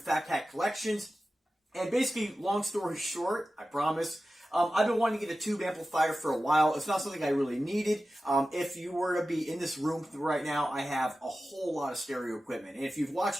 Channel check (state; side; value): normal; both; correlation 0.94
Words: Fat Cat Collections. And basically, long story short, I promise, I've been wanting to get a tube amplifier for a while. It's not something I really needed. If you were to be in this room right now, I have a whole lot of stereo equipment. And if you've watched